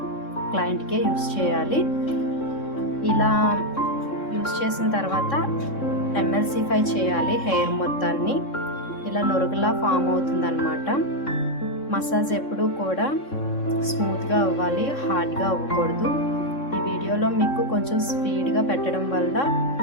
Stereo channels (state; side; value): late; right; 3.6 ms